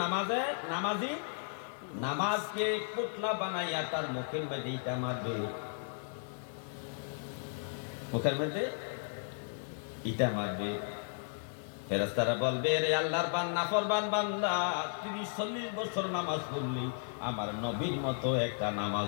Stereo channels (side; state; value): right; silent; digital silence